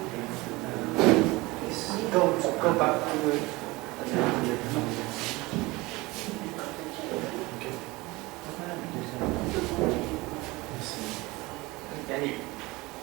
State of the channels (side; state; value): left; quieter; 22.0 dB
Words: Go back to the.